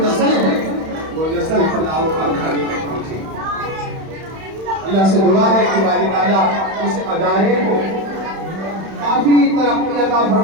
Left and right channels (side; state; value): left; late; 31 ms